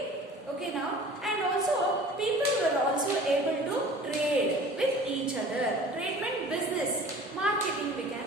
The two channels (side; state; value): both; normal; correlation 0.44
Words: Okay now, and also people were also able to trade with each other. Trade meant business, marketing we